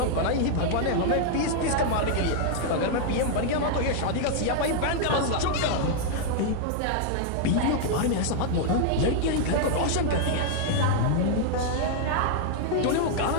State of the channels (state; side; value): different; both; correlation 0.00